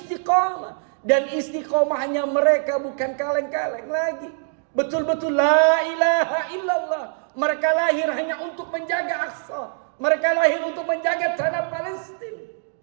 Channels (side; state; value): left; silent; digital silence